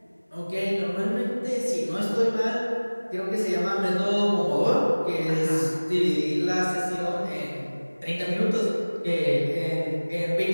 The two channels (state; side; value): inverted; both; correlation -1.00